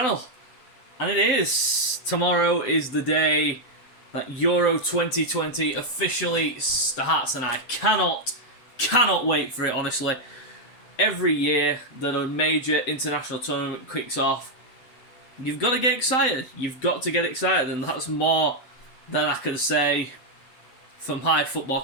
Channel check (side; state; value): right; late; 7.9 ms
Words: And it is. Tomorrow is the day that Euro 2020 officially starts, and I cannot wait for it, honestly. Every year that a major international tournament kicks off, you've got to get excited. You've got to get excited, and that's more than I can say for my football